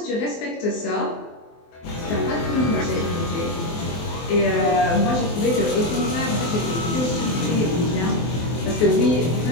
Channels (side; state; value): right; late; 24 ms